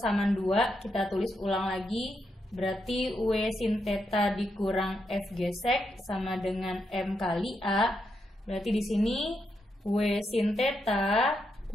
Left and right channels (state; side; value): normal; both; correlation 0.82